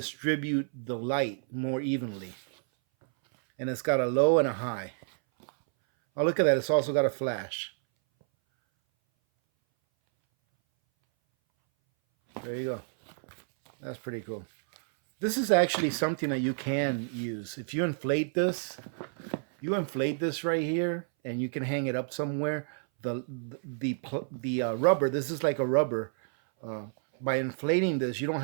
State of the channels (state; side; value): silent; left; 58 dB below the other